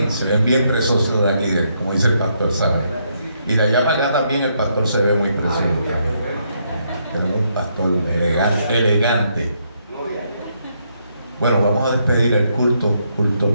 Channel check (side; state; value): both; inverted; correlation -0.75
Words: se ven bien preciosos de aquí, como dice el pastor, ¿sabe? Y de allá para acá también el pastor se ve muy precioso. Tenemos un pastor elegante. Bueno, vamos a despedir el culto